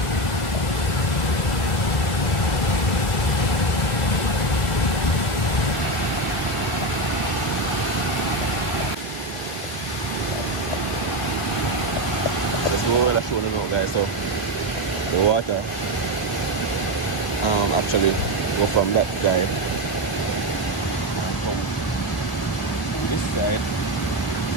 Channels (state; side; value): late; right; 1.8 ms